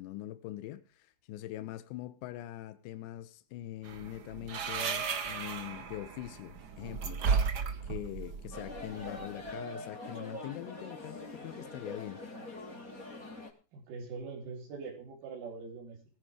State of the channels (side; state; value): left; late; 4.9 ms